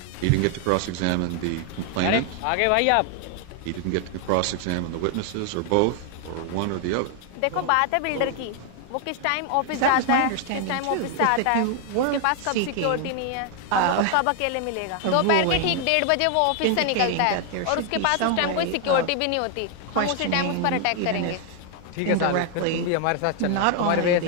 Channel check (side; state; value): both; different; correlation 0.00